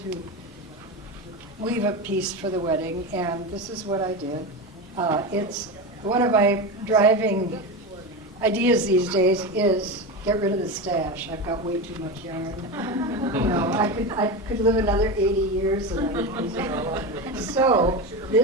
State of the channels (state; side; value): normal; both; correlation 0.20